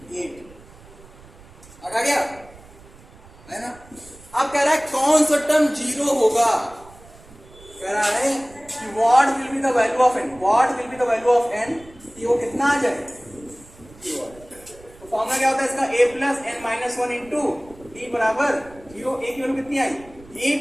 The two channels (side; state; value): right; noise; rumble, 23 dB below the sound